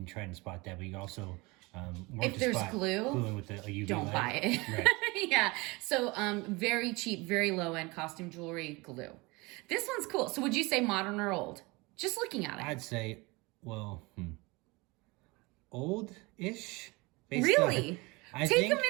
try and spot that, but you also if there's glue, with a UV don't light. buy it. Right. Yeah. So very cheap, very low end costume jewelry glue. This one's cool. So would you say modern or old? Just looking at it. I'd say, old-ish. Really? I Take think, a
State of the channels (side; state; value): left; quieter; 24.6 dB